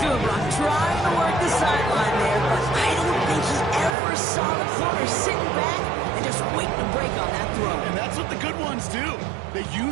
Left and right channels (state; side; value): drops out; left; at 4.0 s